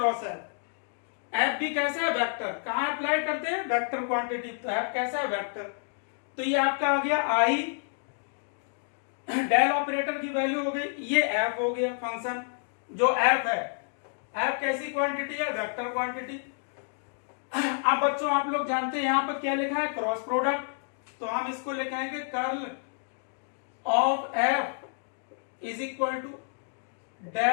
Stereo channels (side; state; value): right; silent; 58 dB below the other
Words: F. F भी कैसा है? वेक्टर। कहां अप्लाई करते हैं? Vector quantity. तो एफ कैसा है? वेक्टर। तो ये आपका आ गया आई, डेल ऑपरेटर की वैल्यू हो गई, ये एफ हो गया फंक्शन जो एफ है। एफ कैसी क्वांटिटी है? Vector quantity. अब बच्चों आप लोग जानते हैं यहां पर क्या लिखा है? Cross product. तो हम इसको लिखाएंगे curl of F is equal to